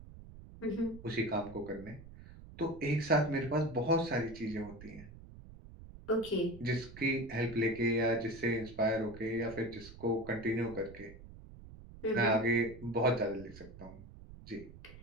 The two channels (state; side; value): noise; right; rumble, 17 dB below the sound